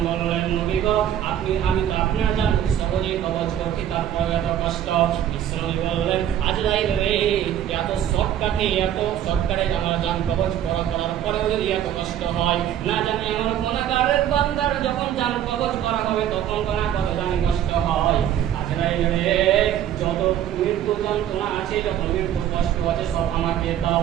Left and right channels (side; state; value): left; quieter; 10.8 dB